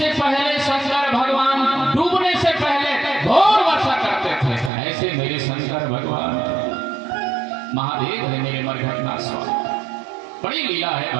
पहले शंकर भगवान डूबने से पहले घोर वर्षा करते थे। ऐसे मेरे शंकर भगवान महादेव है मेरे मरघट नाथ स्वामी। बड़ी लीला है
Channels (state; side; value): drops out; left; at 4.7 s